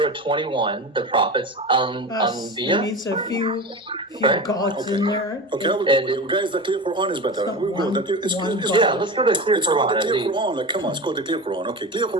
21, the prophets, Us. It Anbiya. needs a few Right. gods in there. Okay, I will go with you guys. The Clear Quran is better. We'll go. Yeah, let's go to the Clear It's called Quran. the Clear Quran. Like, come on, it's called the Clear Quran. Okay, Clear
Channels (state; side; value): normal; both; correlation 0.27